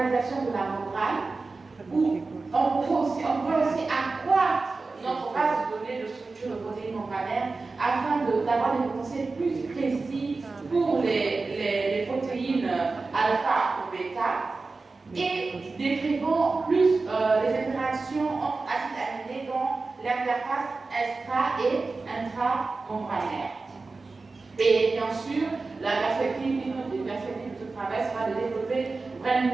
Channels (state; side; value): quieter; left; 3.8 dB